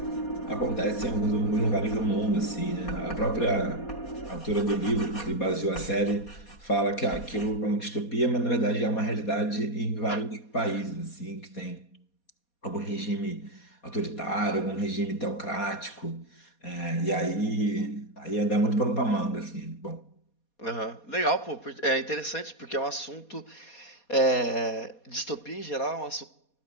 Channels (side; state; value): right; late; 4.2 ms